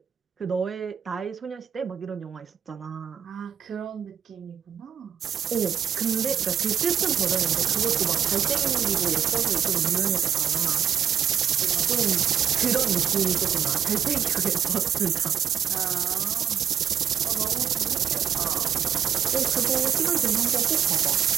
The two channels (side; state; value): left; quieter; 8.3 dB